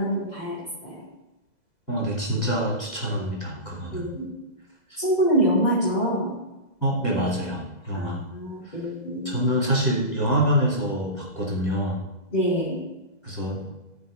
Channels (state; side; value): late; right; 2.0 ms